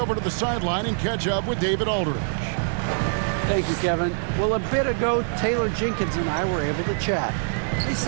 to the sideline and catch up with David Aldridge. Thank you, Kevin. Well, a bit ago, Taylor Jenkins and I were able to chat. He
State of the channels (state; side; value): silent; left; digital silence